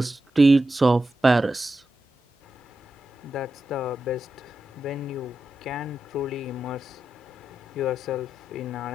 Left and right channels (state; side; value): normal; both; correlation 0.89